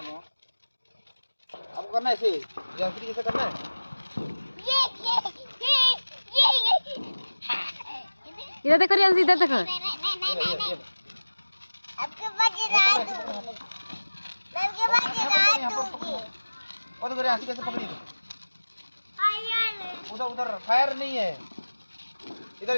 घुमाओ। आपको करना है ऐसे जंतरी जैसे करना है। इधर देखो रियांश, इधर देखो। और तो रियांश कैसे पकड़ी? उधर उधर फायर नहीं है, इधर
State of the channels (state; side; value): inverted; both; correlation -1.00